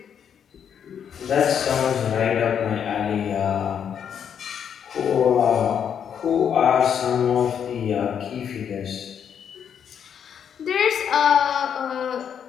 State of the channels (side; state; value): right; quieter; 8.1 dB